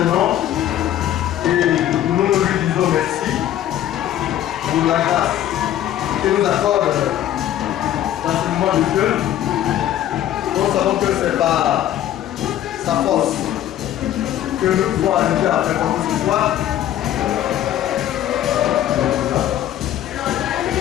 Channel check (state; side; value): quieter; right; 12.0 dB